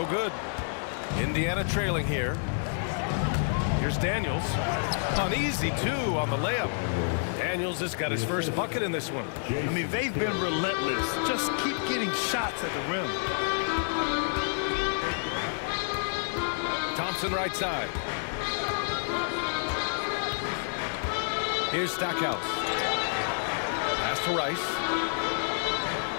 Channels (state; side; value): silent; right; digital silence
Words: good. Indiana trailing here. Here's Daniels. An easy 2 on the layup. Daniels has got his first bucket in this one. I mean, they've been relentless. Just keep getting shots at the rim. Thompson right side. Here's Stackhouse. Pass to Rice.